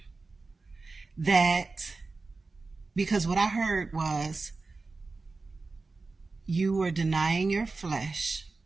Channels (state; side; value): quieter; left; 3.8 dB